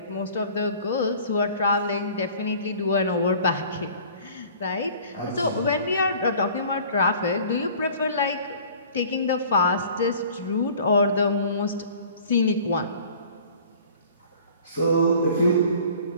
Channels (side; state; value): both; inverted; correlation -0.48